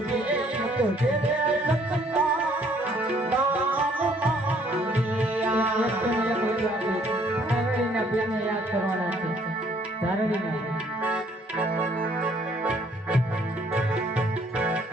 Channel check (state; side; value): normal; both; correlation 0.63